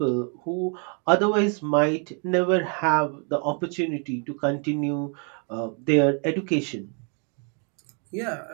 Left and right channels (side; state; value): left; quieter; 39.0 dB